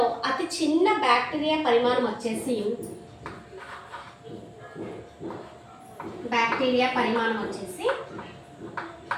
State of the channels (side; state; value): both; identical; correlation 1.00